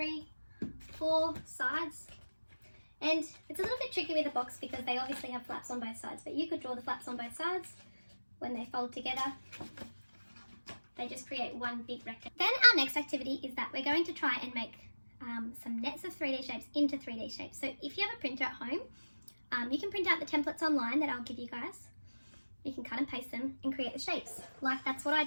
4 sides. And it's a little bit tricky with a box because they obviously have flaps on both sides, but you could draw the flaps on both sides. When they fold together, they just create one big rectangle. Then our next activity is that we're going to try and make some nets of 3D shapes into 3D shapes. So if you have a printer at home, you can print out the templates online that I'll give you guys. You can cut and paste them and create the shapes. Like that's what I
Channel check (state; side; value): inverted; both; correlation -1.00